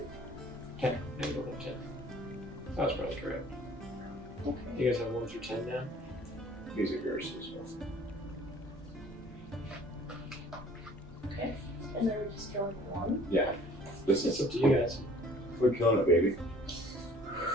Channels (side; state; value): both; normal; correlation 0.52